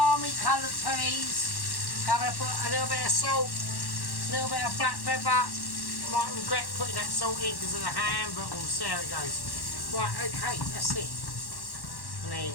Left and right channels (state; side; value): late; right; 1.1 ms